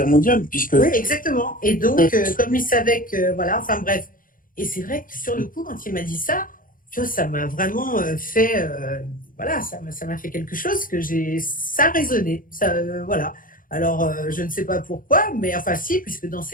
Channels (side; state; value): right; late; 0.40 ms